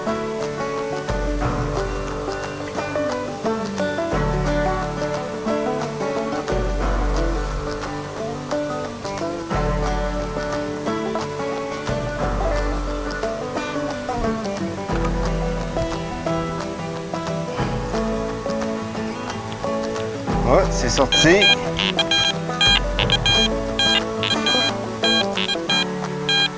Ah, c'est sorti.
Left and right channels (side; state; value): both; identical; correlation 1.00